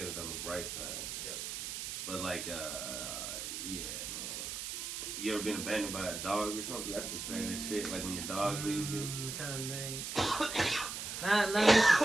it on the bright side. Yep. But like, yeah, man. You ever been abandoned by a dog or something? That's the saddest shit. Like when your dog leaves you. I'm trying to think. Not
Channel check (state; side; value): noise; right; hiss, 5 dB below the sound